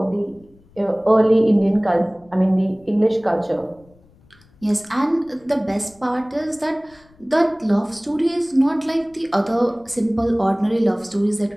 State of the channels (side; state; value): left; noise; rumble, 29 dB below the sound